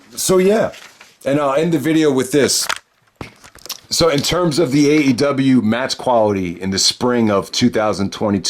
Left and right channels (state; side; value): identical; both; correlation 1.00